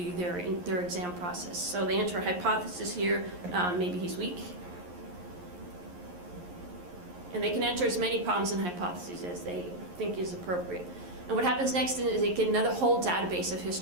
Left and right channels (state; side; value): late; left; 11 ms